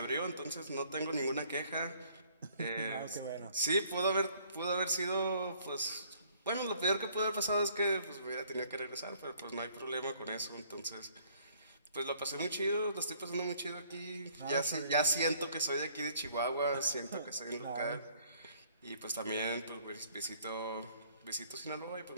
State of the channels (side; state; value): both; inverted; correlation -0.61